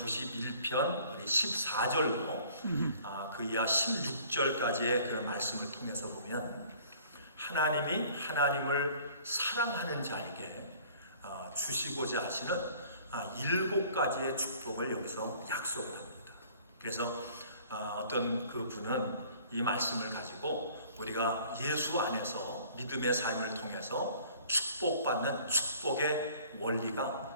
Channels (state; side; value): inverted; both; correlation -0.53